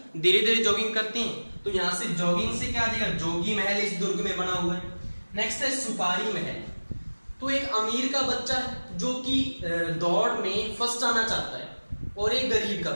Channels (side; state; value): both; inverted; correlation -1.00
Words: धीरे धीरे जॉगिंग करते हैं। तो यहां से जॉगिंग से क्या आ जाएगा, जोगी महल इस दुर्ग में बना हुआ है। नेक्स्ट है सुपारी महल। तो एक अमीर का बच्चा है जो कि दौड़ में फर्स्ट आना चाहता है, और एक गरीब का